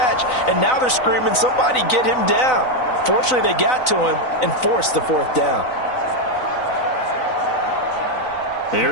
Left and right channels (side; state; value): right; late; 4.0 ms